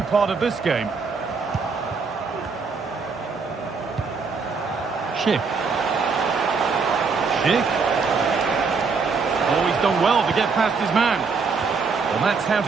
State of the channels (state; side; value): quieter; left; 4.9 dB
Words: of this game. Schick. Oh, he's done well to get past his man. Well, that's how